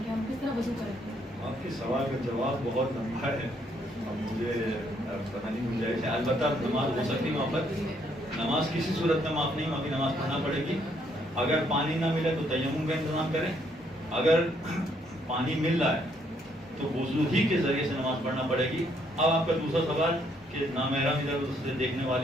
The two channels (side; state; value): both; normal; correlation 0.70